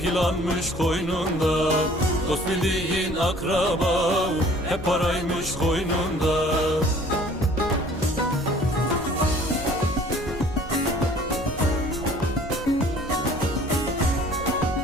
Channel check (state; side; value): normal; both; correlation 0.52